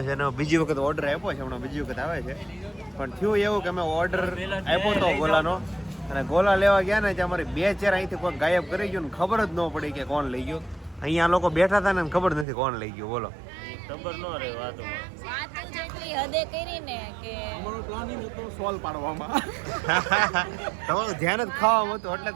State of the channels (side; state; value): left; drops out; at 12.5 s